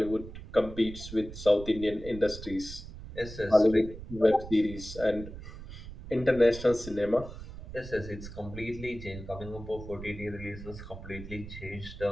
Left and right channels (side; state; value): right; noise; rumble, 12 dB below the sound